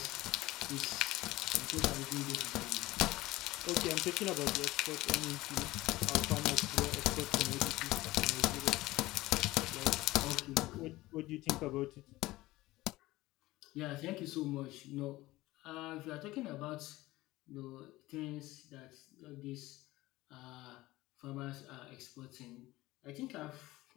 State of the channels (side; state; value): right; quieter; 18.4 dB